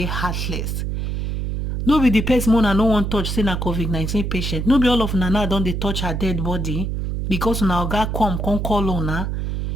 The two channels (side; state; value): right; noise; hum, 2 dB below the sound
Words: heartless. No be the person una no want touch, say na COVID-19 patient. No be all of una now don't they touch her dead body because una oga come call una.